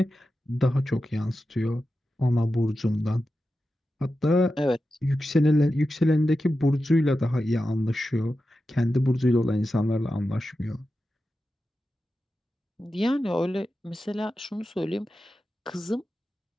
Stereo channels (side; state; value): both; normal; correlation 0.91